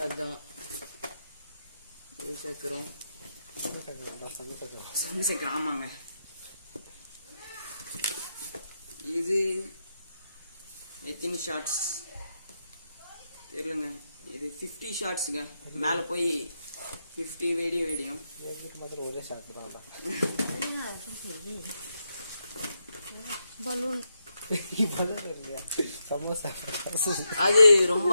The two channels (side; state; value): both; inverted; correlation -0.84